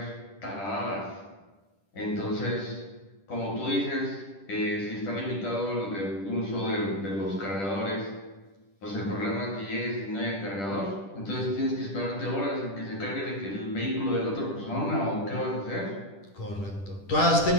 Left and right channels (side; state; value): right; late; 10 ms